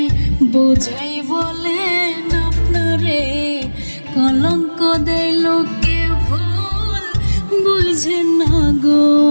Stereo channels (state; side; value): inverted; both; correlation -1.00